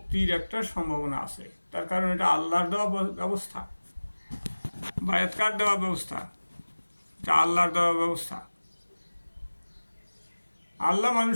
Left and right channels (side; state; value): both; inverted; correlation -1.00